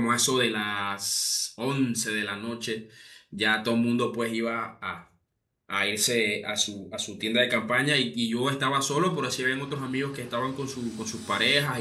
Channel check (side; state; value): both; identical; correlation 1.00